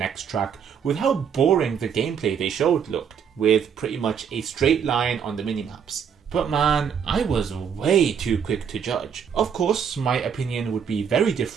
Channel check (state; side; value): quieter; left; 7.4 dB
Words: track with how boring the gameplay they showed looked, with pretty much a straight line on the minimaps. But man, I was way too quick to judge. Of course, my opinion would be very